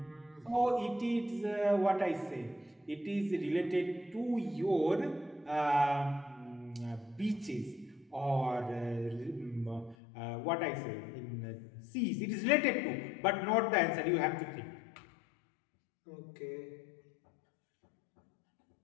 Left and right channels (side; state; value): right; drops out; at 10.0 s